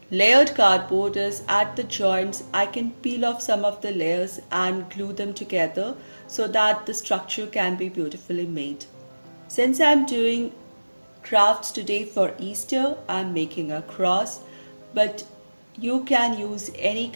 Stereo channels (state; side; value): inverted; both; correlation -1.00